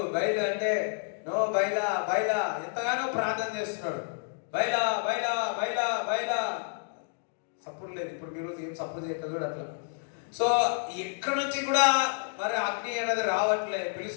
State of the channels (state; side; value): silent; right; 58 dB below the other